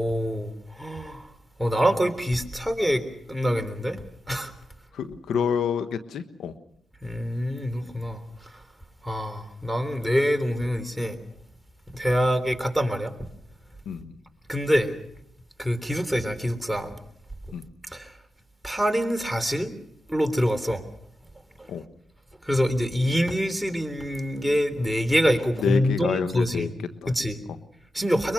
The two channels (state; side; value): normal; both; correlation 0.92